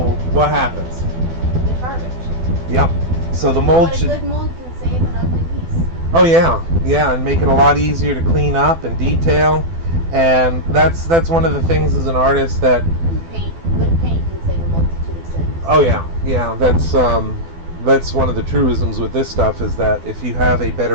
what happens? It's garbage. Yep. So the mold But a good mold can save an ugly piece. Oh yeah, and make it a lot easier to clean up and detail. And that's one of the things as an artist that Good paint can save a multitude of sins. Oh yeah, that's one of the truisms with this stuff, is that if you have a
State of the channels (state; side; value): late; left; 12 ms